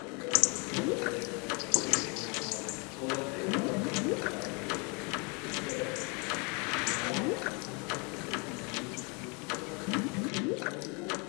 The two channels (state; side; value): quieter; right; 31.9 dB